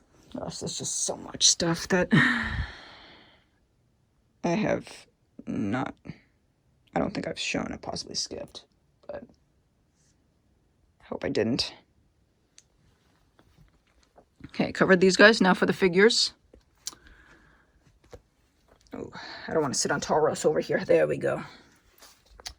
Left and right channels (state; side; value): identical; both; correlation 1.00